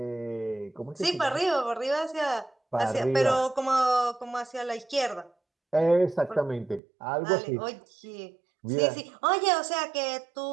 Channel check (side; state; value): left; drops out; at 6.8 s